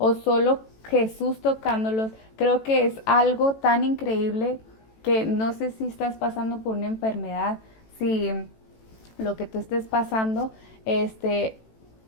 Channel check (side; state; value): right; late; 18 ms